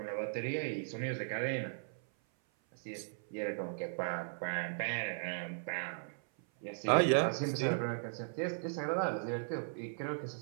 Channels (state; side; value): silent; left; 53 dB below the other